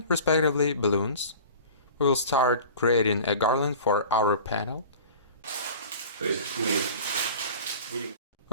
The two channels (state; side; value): inverted; both; correlation -0.40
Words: respectively balloons. We will start creating a garland for our panel. We